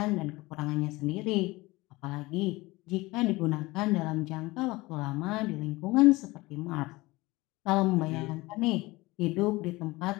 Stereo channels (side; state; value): right; quieter; 21.2 dB